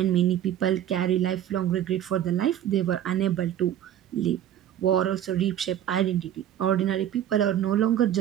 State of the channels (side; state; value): left; quieter; 10.9 dB